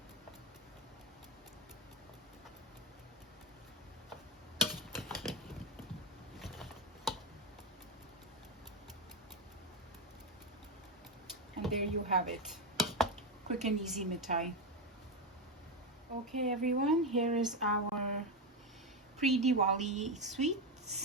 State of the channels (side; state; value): both; normal; correlation 0.11